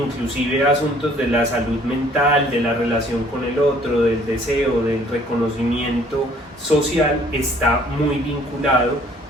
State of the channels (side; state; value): both; normal; correlation 0.58